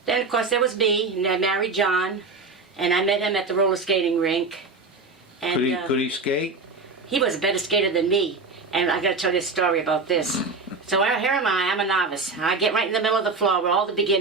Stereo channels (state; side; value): quieter; left; 3.9 dB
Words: of course, there was me, and I married John, and I met him at the roller skating rink. And, Could he skate? he was a better skater than me. And I got to tell you a story about this. So here am I'm a novice. I get right in the middle of the floor where all the